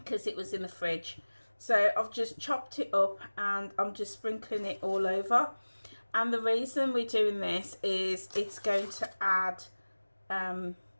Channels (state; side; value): inverted; both; correlation -1.00